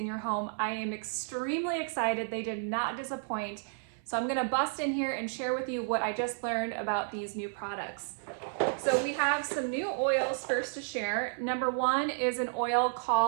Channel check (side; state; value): left; silent; 57 dB below the other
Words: your home. I am extremely excited. They did not disappoint. So I'm gonna bust in here and share with you what I just learned about these new products. So we have some new oils first to share. Number one is an oil